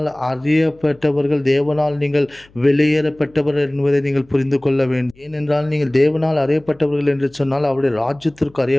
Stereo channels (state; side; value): noise; left; hum, 29 dB below the sound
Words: அறியப்பட்டவர்கள், தேவனால் நீங்கள் வெளியேறப்பட்டவர்கள் என்பதை நீங்கள் புரிந்து கொள்ள வேண்டும். ஏனென்றால் நீங்கள் தேவனால் அறியப்பட்டவர்கள் என்று சொன்னால் அவருடைய ராஜ்யத்திற்கு